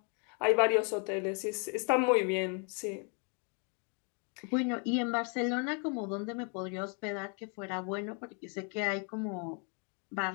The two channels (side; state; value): right; quieter; 38.7 dB